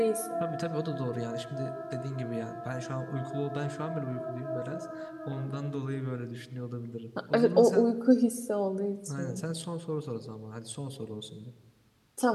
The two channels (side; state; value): both; identical; correlation 1.00